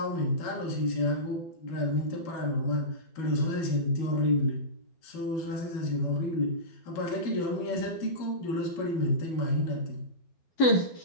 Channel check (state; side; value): late; right; 12 ms